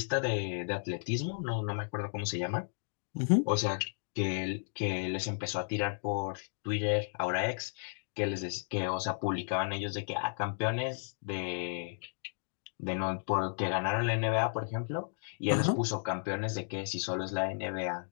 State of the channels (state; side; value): silent; right; digital silence